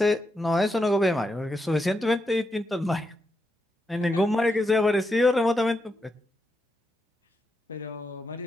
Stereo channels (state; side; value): normal; both; correlation 0.84